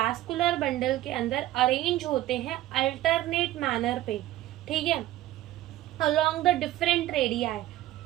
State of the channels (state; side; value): quieter; left; 14.9 dB